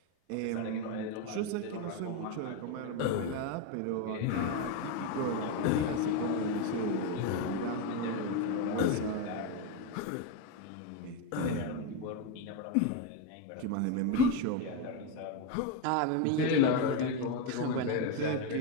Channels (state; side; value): different; both; correlation 0.03